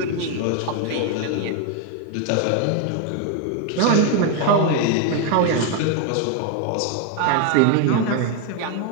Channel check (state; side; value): different; both; correlation 0.01